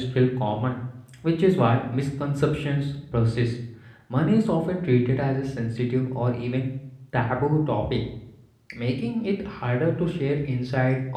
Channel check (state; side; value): identical; both; correlation 1.00